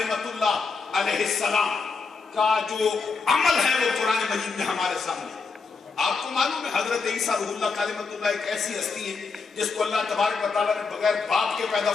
اللہ علیہ السلام کا جو عمل ہے وہ قرآن مجید میں ہمارے سامنے ہے۔ آپ کو معلوم ہے حضرت عیسیٰ روح اللہ کلمۃ اللہ ایک ایسی ہستی ہے جس کو اللہ تبارک و تعالیٰ نے بغیر باپ کے پیدا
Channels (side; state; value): right; quieter; 4.7 dB